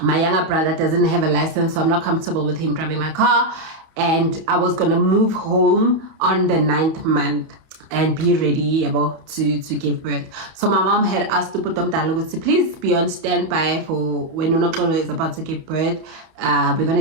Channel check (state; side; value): late; left; 31 ms